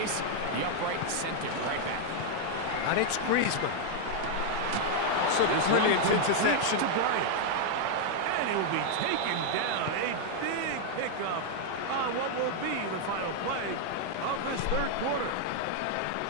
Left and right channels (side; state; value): both; different; correlation 0.00